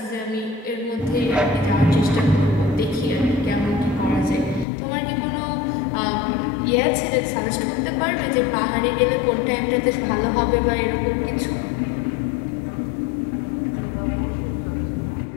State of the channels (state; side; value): drops out; right; at 4.7 s